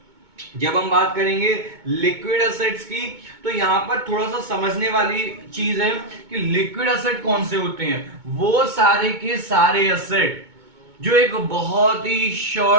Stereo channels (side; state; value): left; late; 2.2 ms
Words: जब हम बात करेंगे लिक्विड असेट्स की, तो यहां पर थोड़ा सा समझने वाली चीज है कि लिक्विड असेट कौन से होते हैं, वो सारे के सारे असेट जो एक बहुत ही